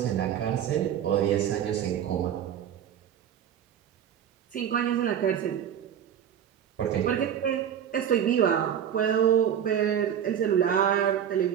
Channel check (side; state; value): left; quieter; 9.3 dB